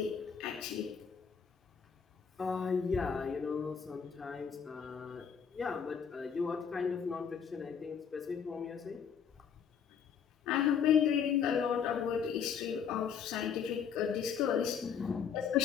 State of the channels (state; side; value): quieter; right; 7.2 dB